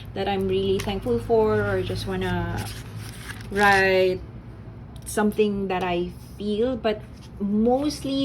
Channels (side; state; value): both; identical; correlation 1.00